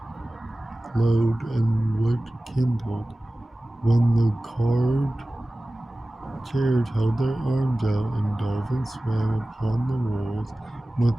glowed and wood kindled, when the carved chairs held their arms out and dolphins swam upon the walls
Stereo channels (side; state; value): both; normal; correlation 0.97